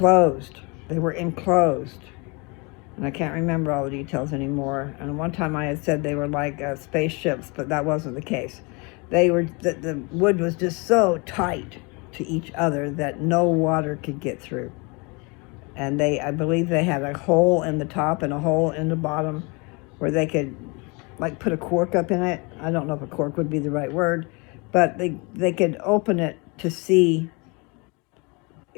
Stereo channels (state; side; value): quieter; right; 29.4 dB